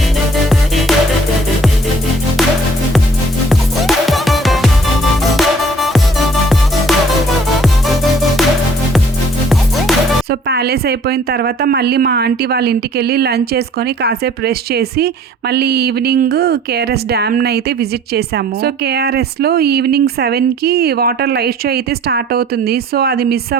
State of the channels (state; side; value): normal; both; correlation 0.55